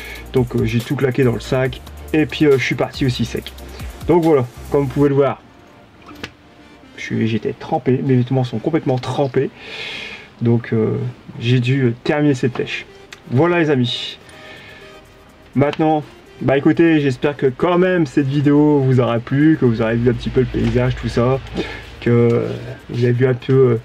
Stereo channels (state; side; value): identical; both; correlation 1.00